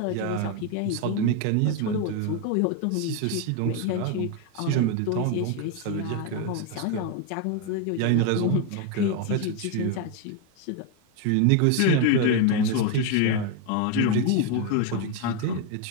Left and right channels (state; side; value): different; both; correlation 0.01